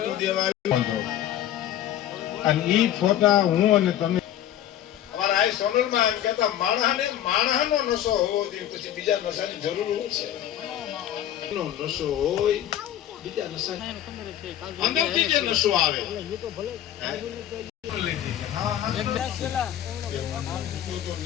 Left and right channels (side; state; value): right; quieter; 11.6 dB